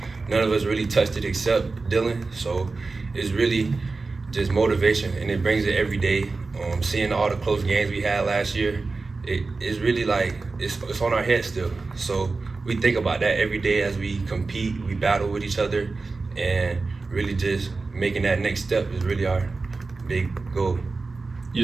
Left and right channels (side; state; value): left; quieter; 3.9 dB